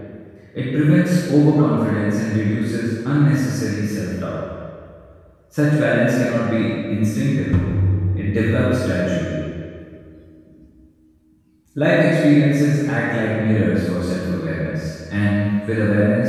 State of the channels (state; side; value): identical; both; correlation 1.00